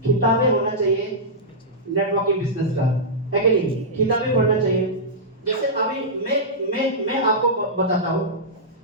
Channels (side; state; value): both; normal; correlation -0.12